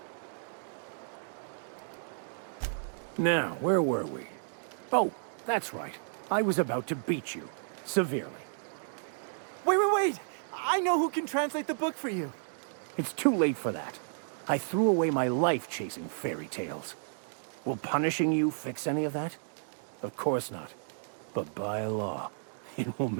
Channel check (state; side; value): silent; left; digital silence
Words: Now, where were we? Oh, that's right. I was about to beat you. Severely. Wait! I know who can translate the book for you. It's too late for that. I threw away my life chasing fairy tales. Will punishing you fix any of that? Of course not. But by law, it will